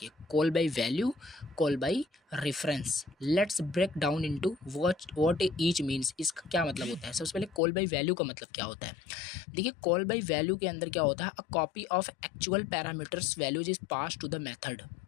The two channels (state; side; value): drops out; right; at 7.6 s